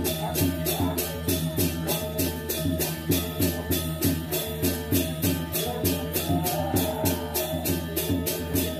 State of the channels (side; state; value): both; identical; correlation 1.00